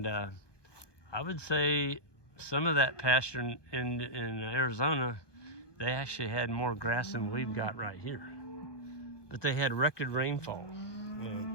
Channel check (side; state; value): right; late; 1.2 ms